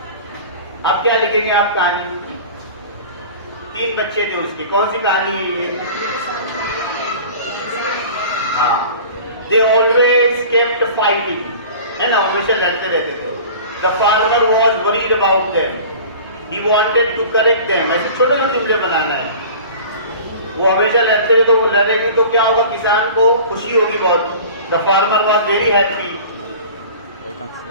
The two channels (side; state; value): both; inverted; correlation -0.41